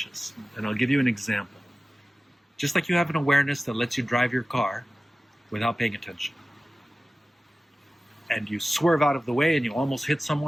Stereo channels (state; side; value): normal; both; correlation 0.96